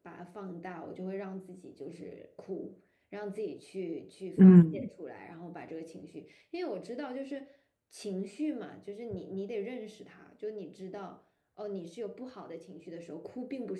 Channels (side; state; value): both; identical; correlation 1.00